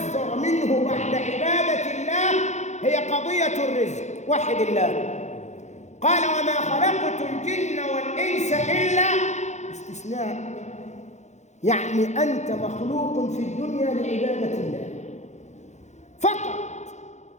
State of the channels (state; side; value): late; right; 0.33 ms